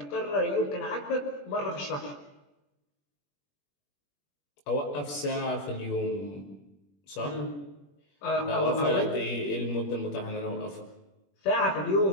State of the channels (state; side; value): late; right; 21 ms